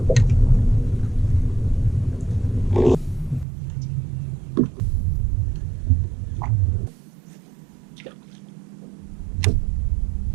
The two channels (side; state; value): left; drops out; at 3.5 s